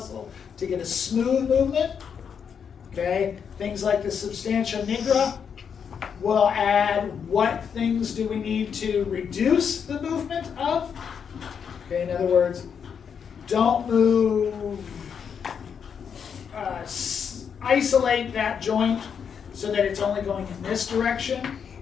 to get a smooth movement? Okay, things like the substantia nigra will add what things do we need to reduce the movement of. Okay, in other words, don't move, isolate that joint so that it's only going in this direction,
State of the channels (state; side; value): quieter; right; 7.1 dB